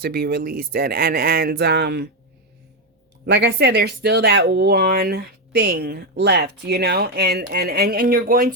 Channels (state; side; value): normal; both; correlation 0.06